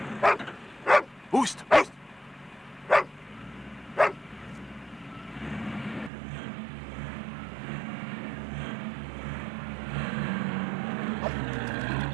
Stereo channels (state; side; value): drops out; left; at 6.1 s